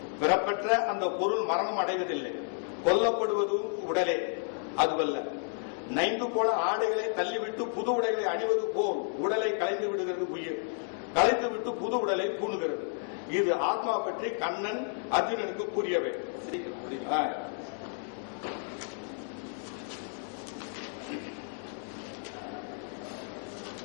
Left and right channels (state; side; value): silent; right; 57 dB below the other